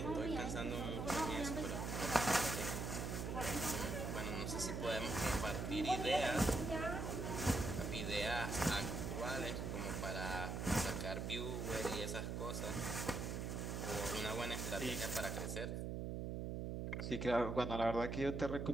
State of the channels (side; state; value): right; noise; hum, 2 dB below the sound